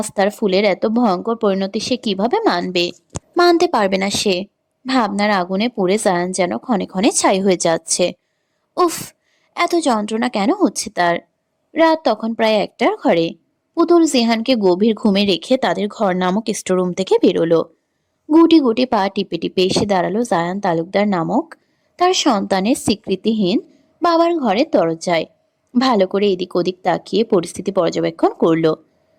তার ফুলের এত ভয়ঙ্কর পরিণতি সে কিভাবে মানবে? মানতে পারবে না সে। ভাবনার আগুনে পুড়ে জায়ান যেন ক্ষণে ক্ষণে ছাই হয়ে যাচ্ছে। উফ, এত যন্ত্রণা কেন হচ্ছে তার? রাত তখন প্রায় 1টার ঘরে। পুতুল জিহানকে গভীর ঘুমে রেখে তাদের ঘর নামক স্টোরুম থেকে বেরোলো। গুটি গুটি পা টিপে টিপে এসে দাঁড়ালো জায়ান তালুকদার নামক তার সন্তানের স্বীকৃতিহীন বাবার ঘরের দরজায়। ভালো করে এদিক ওদিক তাকিয়ে পরিস্থিতি পর্যবেক্ষণ করলো।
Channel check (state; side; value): identical; both; correlation 1.00